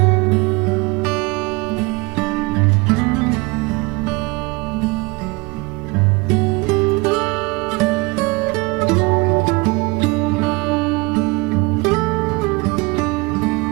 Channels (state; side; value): quieter; left; 26.0 dB